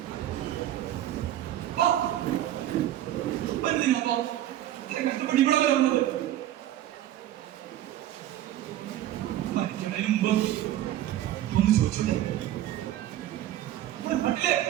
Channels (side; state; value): left; quieter; 12.9 dB